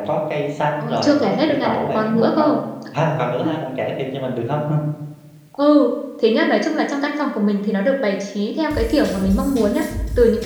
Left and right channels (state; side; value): identical; both; correlation 1.00